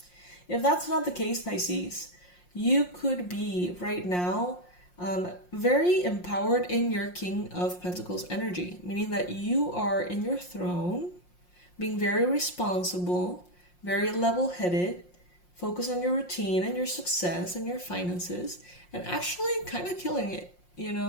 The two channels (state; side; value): late; right; 5.6 ms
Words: If that's not the case, Pisces, you could be right now very empowered in your King of Pentacles energy, meaning that you are in your throne, being very responsible, very level-headed, focus on your routine and your success and your finances, and actually kind of killing it, you